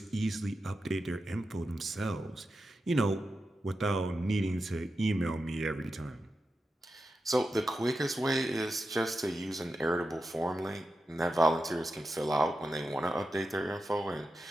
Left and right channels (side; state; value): both; normal; correlation 0.90